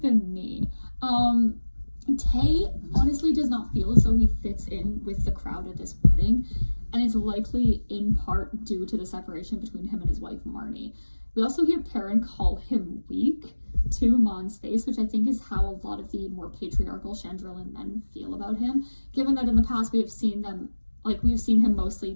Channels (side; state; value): both; inverted; correlation -1.00